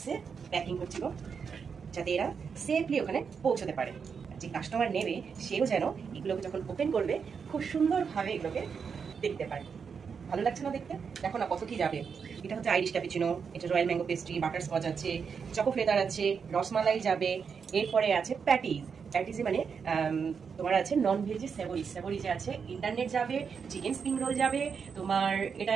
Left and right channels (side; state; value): left; quieter; 6.2 dB